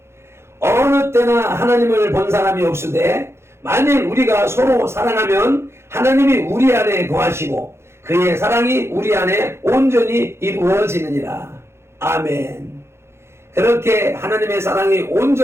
어느 때나 하나님을 본 사람이 없으되 만일 우리가 서로 사랑하면 하나님이 우리 안에 거하시고 그의 사랑이 우리 안에 온전히 이루어지느니라. 아멘. 그렇게 하나님의 사랑이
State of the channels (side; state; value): left; late; 0.12 ms